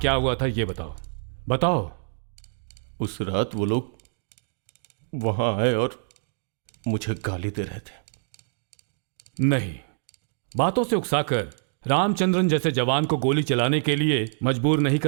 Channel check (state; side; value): silent; left; digital silence